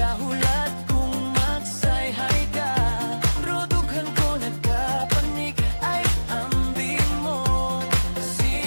kung magsayhay ka. Bro, dughan ko nagkapanik, ay ambing mo.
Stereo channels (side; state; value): both; inverted; correlation -1.00